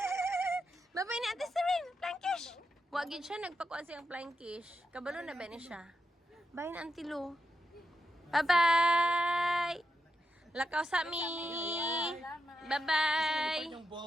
Bye-bye ni Ate Serene! Plankish! Wagin siya, nagpakuan siyang plankish. Kabalo na ba ni siya? Bye na Auntie Lou. Bye-bye! Lakaw sa mi! Bye-bye! yung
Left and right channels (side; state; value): both; normal; correlation 0.85